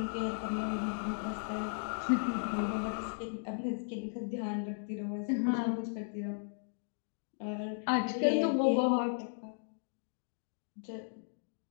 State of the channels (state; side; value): silent; right; digital silence